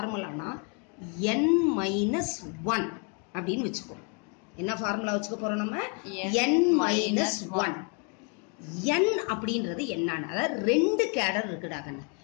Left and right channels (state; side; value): quieter; right; 35.3 dB